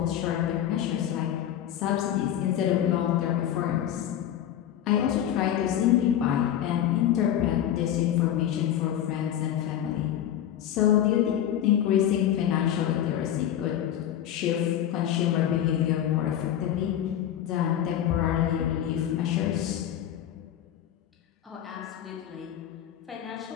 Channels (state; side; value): quieter; right; 10.9 dB